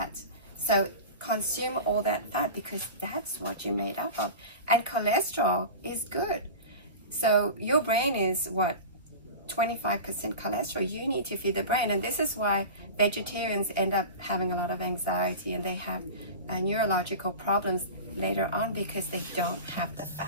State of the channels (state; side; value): inverted; both; correlation -0.31